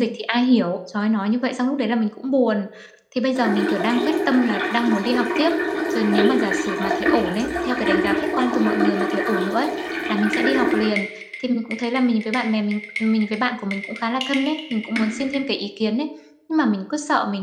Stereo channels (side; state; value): both; identical; correlation 1.00